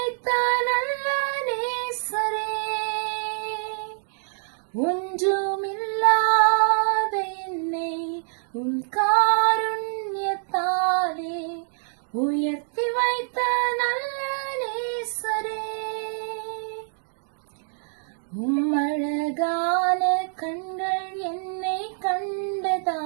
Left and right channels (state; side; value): silent; left; digital silence